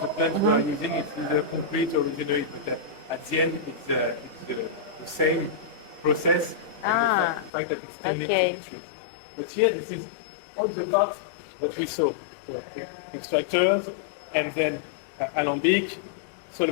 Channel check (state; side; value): drops out; right; at 7.5 s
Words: plant we are using, it's either concrete or resinoid. But at the end, it's the same process. Ah, The fact that it still needs okay. to be treated. But here, this is all the parts that we saw. So, extractors, and then alembic,